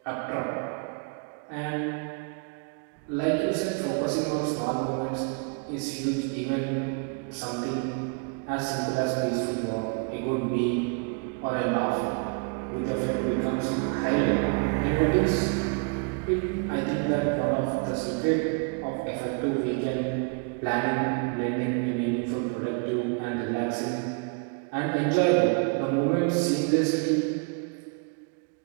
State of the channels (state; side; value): quieter; left; 36.7 dB